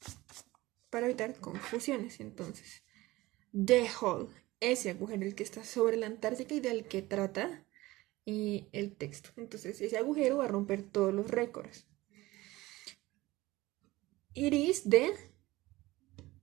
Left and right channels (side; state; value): left; quieter; 19.1 dB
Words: para evitar confusiones. Entonces, the hole, ese agujero, el que está sobre la Antártica y del que trata el texto. Entonces, ese agujero va a romper todos los récords. It is the,